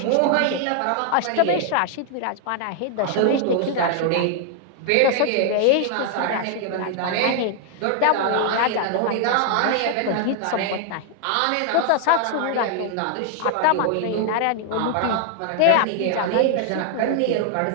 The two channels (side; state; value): both; different; correlation 0.00